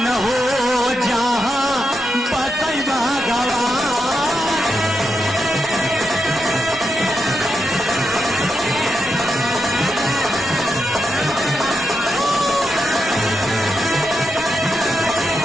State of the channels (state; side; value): normal; both; correlation 0.85